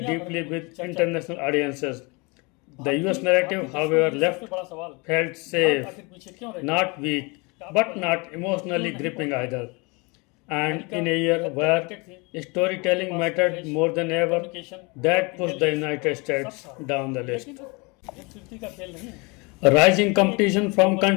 deeply with international audiences. The US narrative, however, felt safe, not weak, but not emotionally gripping either. And in a year where storytelling mattered more than ever, that pushed the United States down the list. A rising competition from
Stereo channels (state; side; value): quieter; right; 28.5 dB